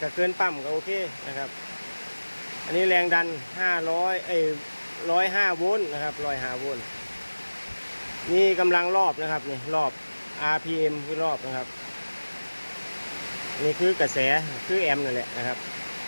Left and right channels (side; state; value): both; inverted; correlation -1.00